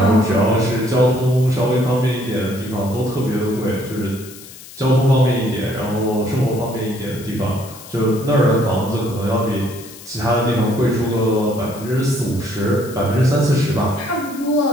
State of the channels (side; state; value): left; noise; hiss, 17 dB below the sound